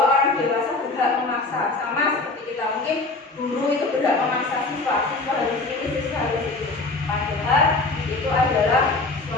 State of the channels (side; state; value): right; quieter; 3.4 dB